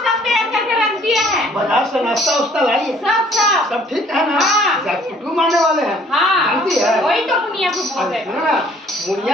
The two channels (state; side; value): normal; both; correlation 0.58